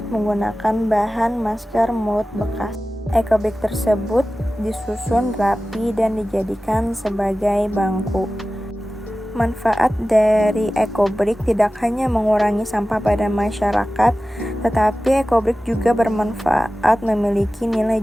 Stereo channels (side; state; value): both; normal; correlation 0.96